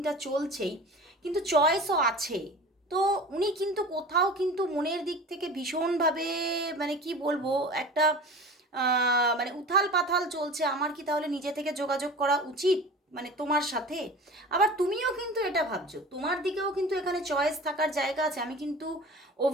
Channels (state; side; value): normal; both; correlation 0.37